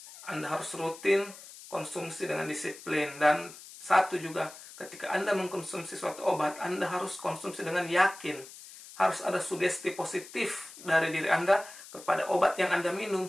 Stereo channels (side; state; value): left; noise; hiss, 17 dB below the sound